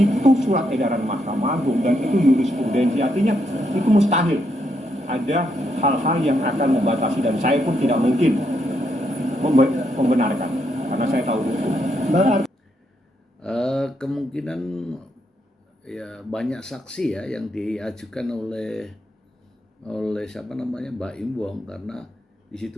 surat edaran Mahkamah Agung dan itu jurisprudensi, artinya itu mustahil ada hal-hal yang akan membatasi, dan saya pun tidak mungkin membenarkan karena saya tahu itu. Kemungkinan ya banyak saksi ya yang diajukan oleh siapa namanya Baim Wong, karena di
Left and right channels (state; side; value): normal; both; correlation 0.78